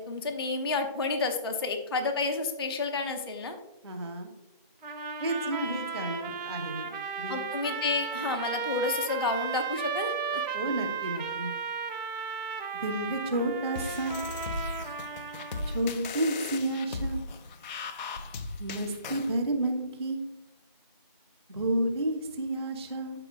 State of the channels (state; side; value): inverted; both; correlation -0.39